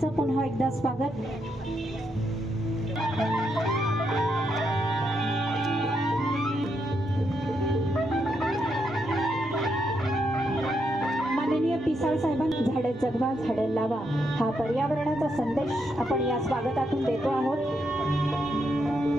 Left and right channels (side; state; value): both; normal; correlation 0.80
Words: पुन्हा एकदा स्वागत. पिसाळ साहेबांनी झाडे जगवा झाडे लावा हा पर्यावरणाचा संदेश आपण या स्वागतातून देतो आहोत.